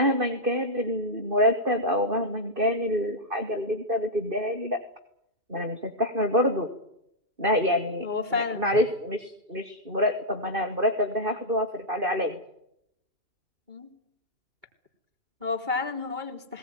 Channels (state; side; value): late; left; 2.2 ms